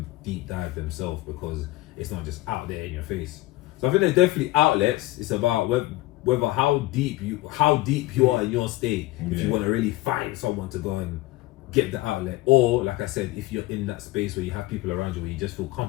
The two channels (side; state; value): right; quieter; 18.3 dB